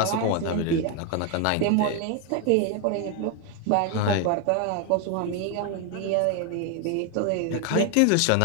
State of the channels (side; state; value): both; different; correlation 0.01